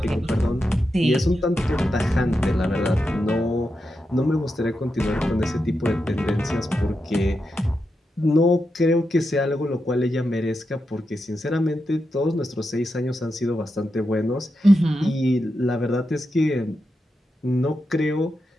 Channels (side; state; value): both; normal; correlation 0.87